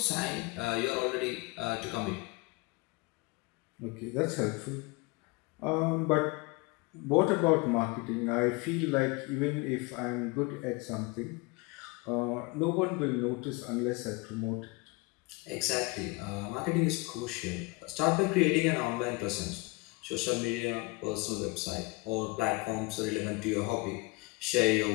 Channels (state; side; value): quieter; right; 25.9 dB